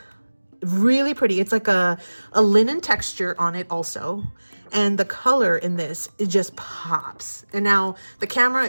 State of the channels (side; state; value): both; inverted; correlation -1.00